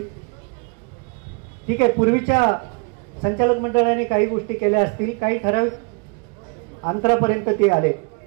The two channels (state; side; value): quieter; left; 33.8 dB